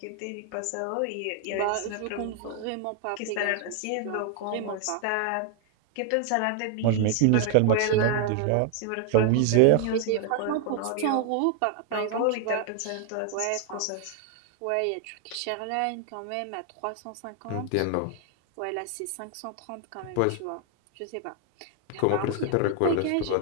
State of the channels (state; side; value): different; both; correlation 0.00